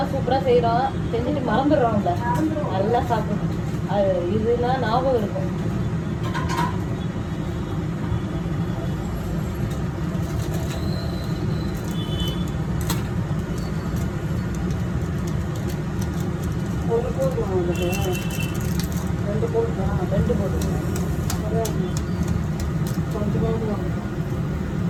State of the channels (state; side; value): identical; both; correlation 1.00